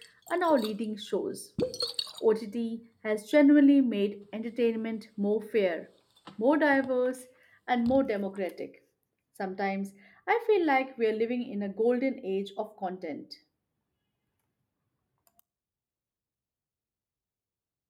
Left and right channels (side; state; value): both; identical; correlation 1.00